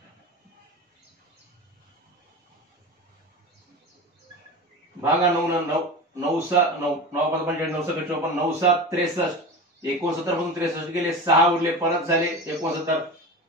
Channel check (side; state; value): both; normal; correlation 0.29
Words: भागा 9 9 9 7 9 9 5 55 9 7 54, 9 7 63, 69 मधून 63 गेले, 6 उरले, परत झाले 69,